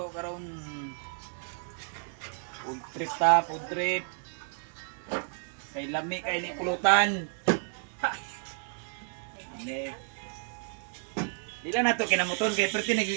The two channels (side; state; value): left; silent; 57 dB below the other